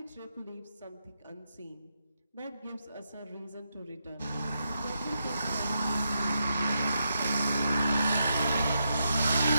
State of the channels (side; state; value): both; inverted; correlation -0.83